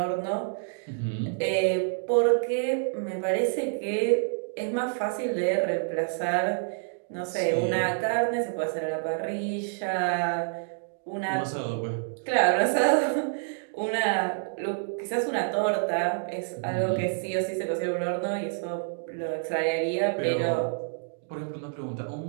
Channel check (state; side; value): silent; left; digital silence